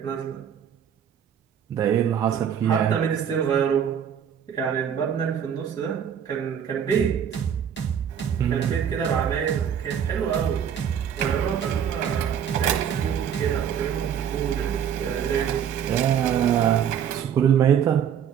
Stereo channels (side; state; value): left; quieter; 8.6 dB